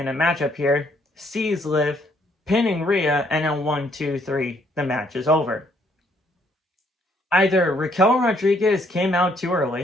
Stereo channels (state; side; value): normal; both; correlation 0.68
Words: a matchup here, sees Liv, pinning Rhea, and then 1, 2, 3, the match is over. Either Raquel Rodriguez came out too